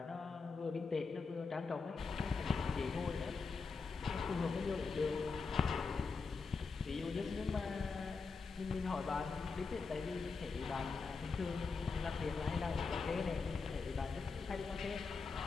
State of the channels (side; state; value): right; quieter; 4.6 dB